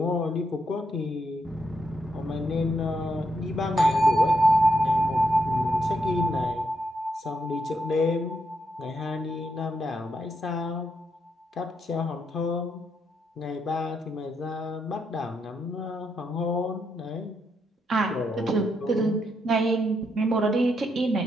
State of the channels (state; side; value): normal; both; correlation 0.80